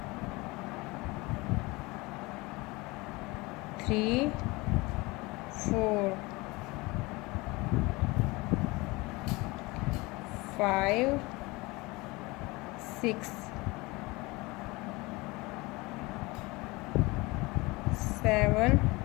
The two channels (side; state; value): right; quieter; 23.4 dB